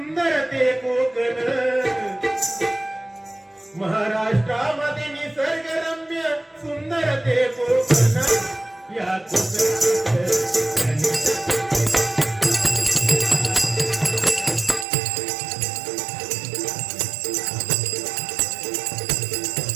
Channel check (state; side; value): drops out; left; at 14.9 s